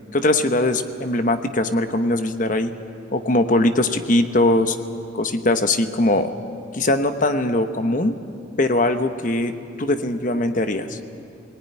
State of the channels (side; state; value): both; normal; correlation 0.38